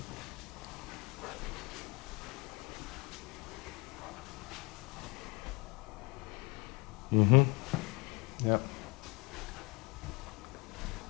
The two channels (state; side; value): quieter; right; 28.3 dB